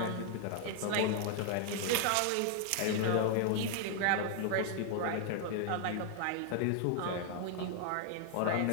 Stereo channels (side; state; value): both; different; correlation 0.00